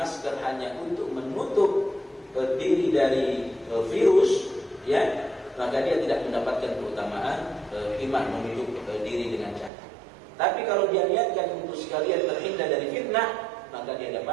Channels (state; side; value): drops out; left; at 9.7 s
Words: hanya untuk menutup diri dari virus, ya, maka dia tidak mendapatkan keutamaan iman menutup diri dengan cadar. Tapi kalau dia niatkan untuk sekalian terhindar dari fitnah, maka dia